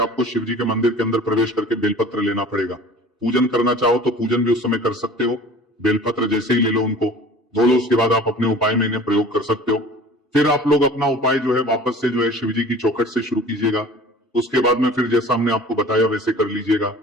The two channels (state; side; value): normal; both; correlation 0.44